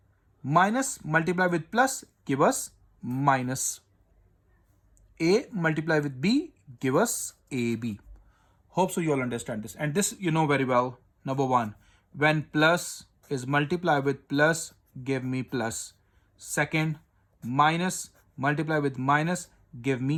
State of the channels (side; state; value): both; identical; correlation 1.00